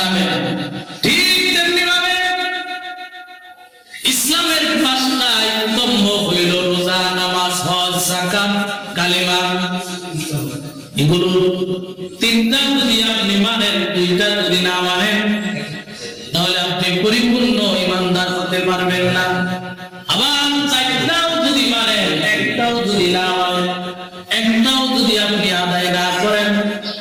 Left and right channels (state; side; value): identical; both; correlation 1.00